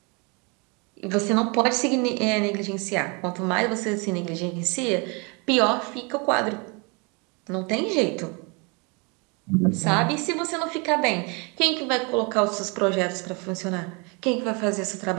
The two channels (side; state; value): left; quieter; 31.2 dB